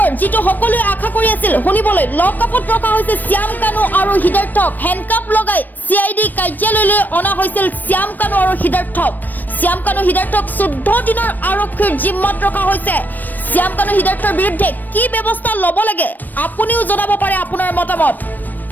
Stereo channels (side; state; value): right; late; 0.088 ms